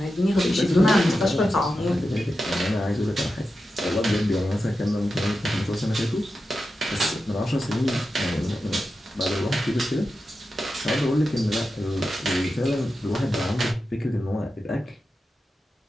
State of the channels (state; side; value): normal; both; correlation 0.91